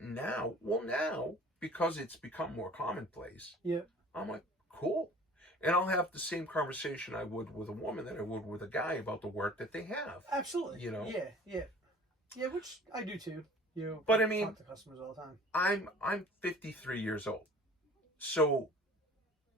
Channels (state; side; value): normal; both; correlation 0.46